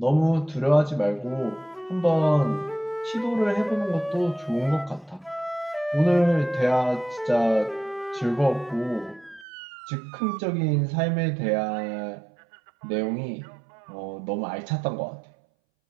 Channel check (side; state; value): left; drops out; at 9.5 s